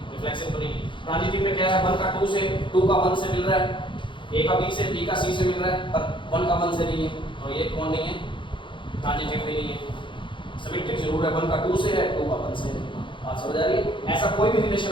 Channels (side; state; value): right; late; 0.24 ms